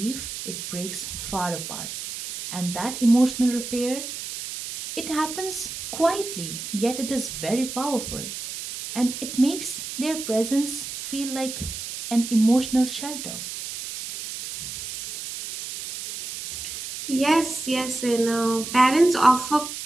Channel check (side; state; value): right; noise; hiss, 8 dB below the sound